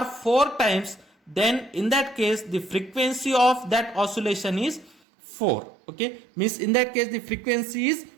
4 times. Then in that case the frequency of that oscillation is 4. Okay, means in that case the frequency is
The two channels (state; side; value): drops out; left; at 5.0 s